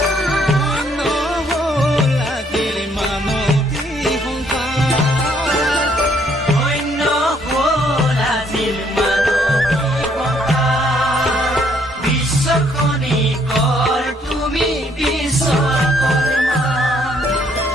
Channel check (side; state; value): both; normal; correlation 0.67